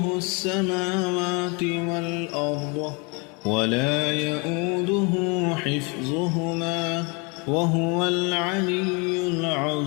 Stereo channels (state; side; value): quieter; right; 31.4 dB